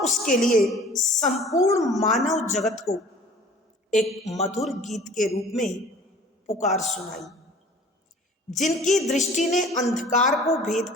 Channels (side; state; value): both; normal; correlation 0.47